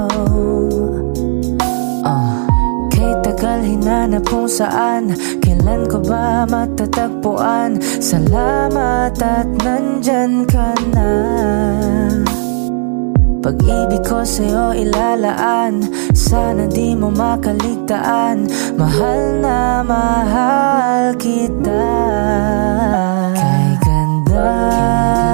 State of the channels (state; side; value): silent; left; 56 dB below the other